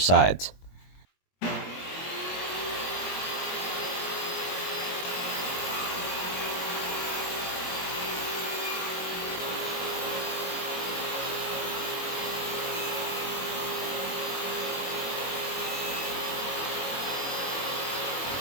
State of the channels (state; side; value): late; right; 22 ms